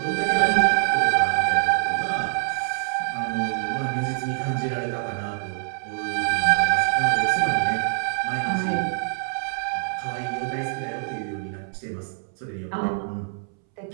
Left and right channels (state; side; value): silent; left; 62 dB below the other